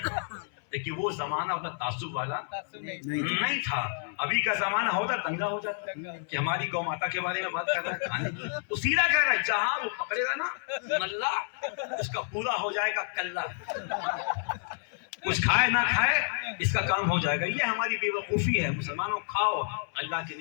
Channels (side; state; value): right; silent; 58 dB below the other